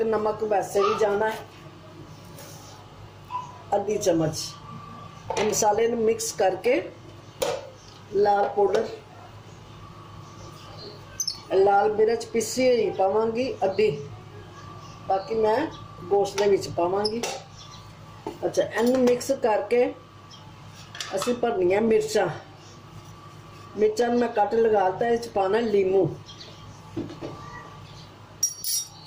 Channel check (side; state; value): both; identical; correlation 1.00